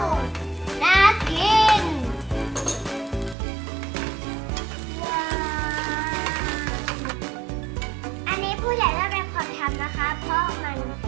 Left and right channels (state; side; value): drops out; left; at 3.4 s